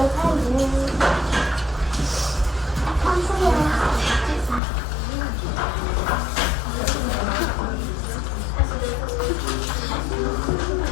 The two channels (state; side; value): drops out; right; at 4.6 s